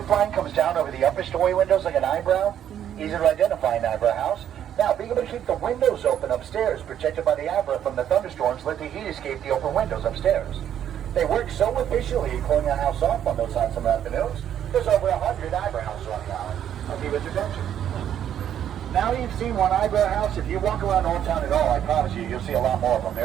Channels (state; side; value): quieter; left; 10.0 dB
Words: line comes down over the upper story windows like an eyebrow? Easy to identify an eyebrow house. Now, being able to keep the windows open upstairs, protected by the eyebrow from the thunderstorms, let the heat escape the open windows upstairs. They work so efficiently in cooling our house off on those hot summer afternoons, there's over 100 eyebrow houses on the island. I'll give it attention. Now you've seen one eyebrow house. If you walk around Old Town at all, I promise you'll see a lot more of them.